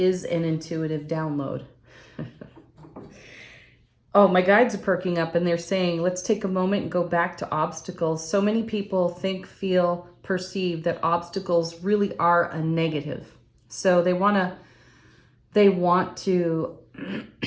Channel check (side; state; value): both; identical; correlation 1.00